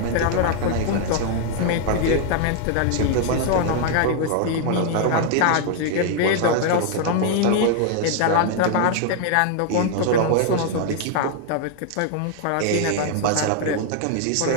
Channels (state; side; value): different; both; correlation 0.00